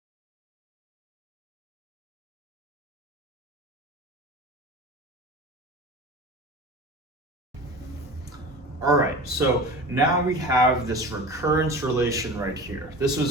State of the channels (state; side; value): normal; both; correlation 0.35